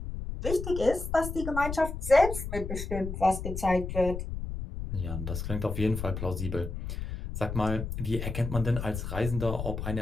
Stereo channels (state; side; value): noise; left; rumble, 5 dB below the sound